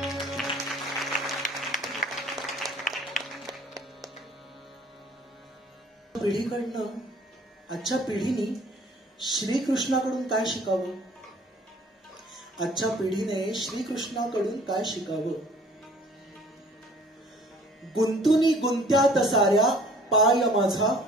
पिढीकडनं आजच्या पिढीने श्रीकृष्णाकडून काय शिकावं आजच्या पिढीने श्रीकृष्णाकडून काय शिकावं गुंतुनी गुंत्यात साऱ्या पाय माझा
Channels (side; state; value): both; normal; correlation 0.54